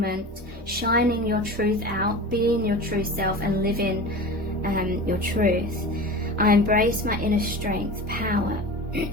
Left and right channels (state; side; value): normal; both; correlation 0.32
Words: shining your truth out, being your true self and living your truth. I embrace my inner strength, power